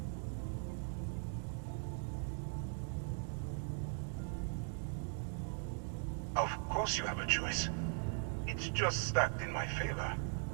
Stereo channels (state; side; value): silent; left; 51 dB below the other